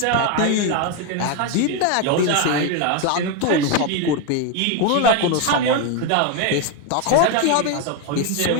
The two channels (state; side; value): different; both; correlation 0.02